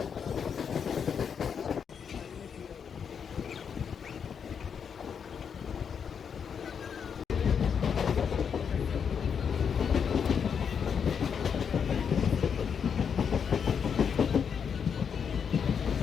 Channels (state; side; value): quieter; right; 7.0 dB